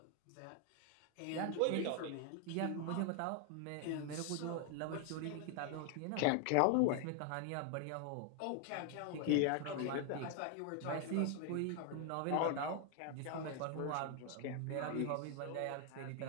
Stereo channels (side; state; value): both; different; correlation 0.00